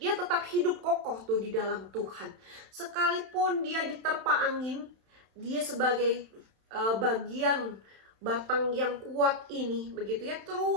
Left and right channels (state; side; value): late; left; 31 ms